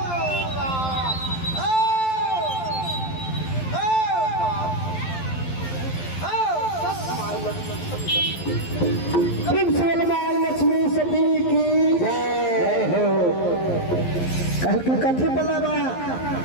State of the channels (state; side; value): late; right; 11 ms